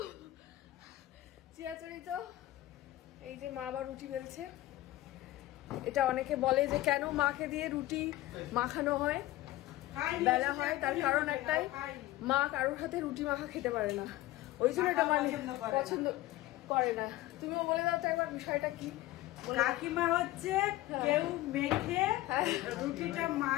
চিরাচরিত, এই যে মা আবার রুটি বেলছে। এটা অনেকে বলে যে কেন মাকে দিয়ে রুটি মাখানো হয়, বেলা হয়, তার কারণ একটাই, মা কারোর হাতে রুটি মাখা খেতে পারে না, ওই জন্য এটা মানে পছন্দ করে না। তুমিও বলে দাও তো একবার বিষয়টা কি। কাকিমা হচ্ছে কেউ মেখে রুটিটা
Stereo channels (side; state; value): right; quieter; 16.6 dB